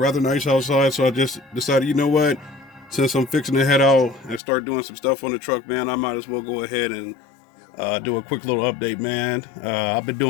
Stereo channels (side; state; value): right; drops out; at 4.4 s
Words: nice outside, so I just decided, you know what? Since I'm fixing to head out and start doing some stuff on the truck, man, I might as well go ahead and do a quick little update, man. I've been